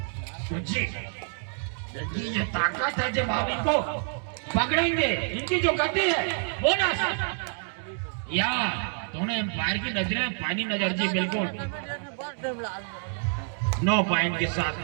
तो जी ये ताकत है, जब आप इनको पकड़ेंगे, इनकी जो गति है बोनस या दोनों एम्पायर की नजरें पानी नजर जी। बिल्कुल 9 पॉइंट के साथ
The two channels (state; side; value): silent; left; 60 dB below the other